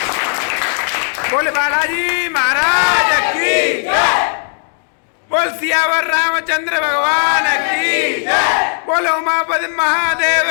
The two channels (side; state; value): right; silent; digital silence